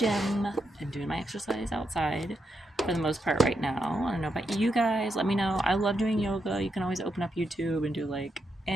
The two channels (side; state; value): both; normal; correlation 0.82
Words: and doing my exercise outside for the most part right now. I don't know about you guys. Let me know. I love doing yoga. You can always open up YouTube and do, like,